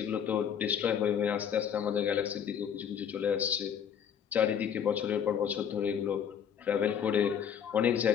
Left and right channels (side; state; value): right; quieter; 8.1 dB